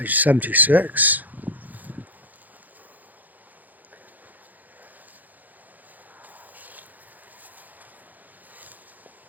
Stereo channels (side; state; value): left; late; 0.082 ms